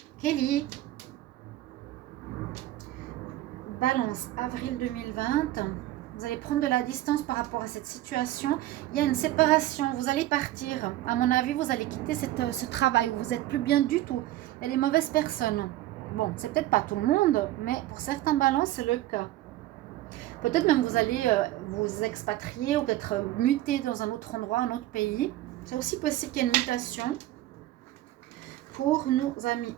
Kelly. Balance, avril 2020. Vous allez prendre de la distance par rapport à cette situation. Il y a une séparation. Vous allez partir. À mon avis, vous allez quitter ce travail où vous n'êtes plus bien du tout. Il y a des mauvaises personnes. Bon, c'est peut-être pas tout le monde, mais pour certains balances, c'est le cas. Peut-être même vous allez vous expatrier ou peut-être muter dans un autre endroit, un autre pays. C'est aussi possible qu'il y ait une mutation. Pour nos amis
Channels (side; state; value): left; quieter; 15.2 dB